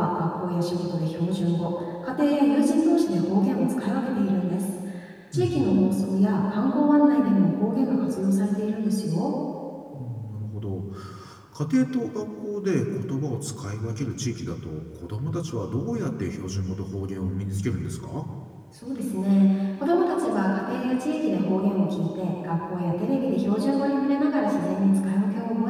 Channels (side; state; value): both; identical; correlation 1.00